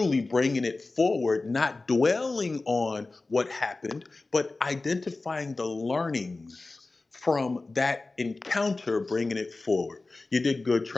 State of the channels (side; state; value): right; quieter; 3.4 dB